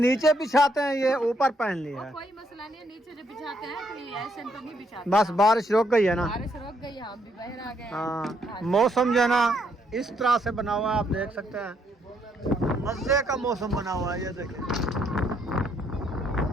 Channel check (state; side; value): normal; both; correlation 0.72